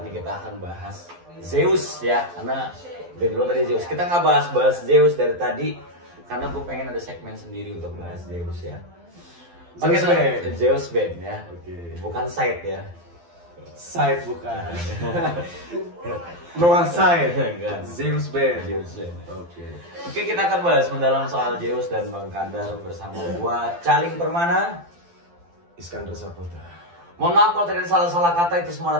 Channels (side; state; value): left; late; 12 ms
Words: kita akan bahas Zeus ya, karena dari dulu tadi Zeus. Kita nggak bahas Zeus dari tadi karena gue pengen ada segmen sendiri untuk bahas Zeus ya. Oke, Zeus Band ya. Oke. Bukan side ya. Side bukan. Noah Side. Enggak. Zeus Band. Zeus Band. Oke. Oke, kita akan bahas mendalam soal Zeus dan Bang Kandar bersama gua Caling Permana, Iskandar Saputra. Mohon maaf kalau tadi ada salah-salah kata, itu semua